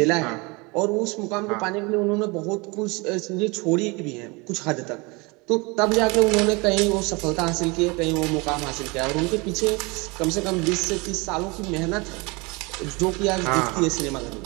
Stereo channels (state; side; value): quieter; left; 27.0 dB